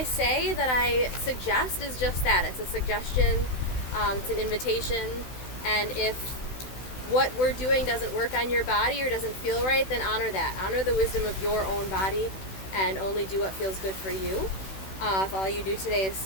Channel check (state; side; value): late; right; 16 ms